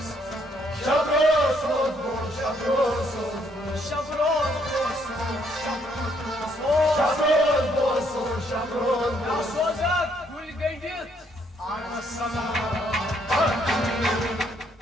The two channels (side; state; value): both; normal; correlation 0.70